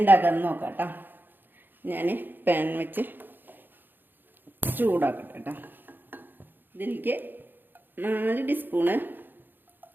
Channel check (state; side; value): late; left; 0.093 ms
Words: ഉണ്ടാക്കാമെന്ന് നോക്കാം കേട്ടോ. ഞാൻ പാൻ വെച്ച് ചൂടാക്കട്ടെ കേട്ടോ. ഇതിലേക്ക് 4 ടീസ്പൂണ്